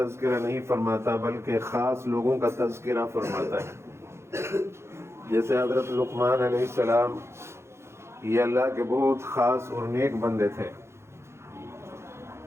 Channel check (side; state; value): left; late; 0.13 ms